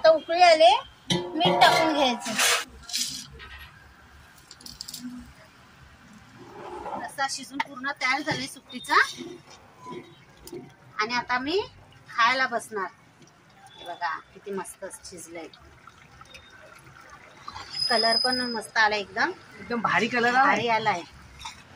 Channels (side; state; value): both; identical; correlation 1.00